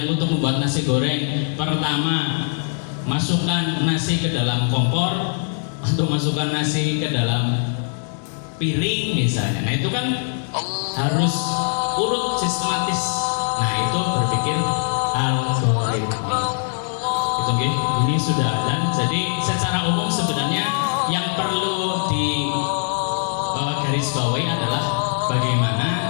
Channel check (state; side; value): silent; right; digital silence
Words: untuk membuat nasi goreng pertama masukkan nasi ke dalam kompor atau masukkan nasi ke dalam piring misalnya. Nah, itu kan harus urut sistematis. Nah, itu berpikir algoritmik. Itu ini sudah ada. Jadi secara umum sebenarnya yang perlu di garis bawahi adalah bagaimana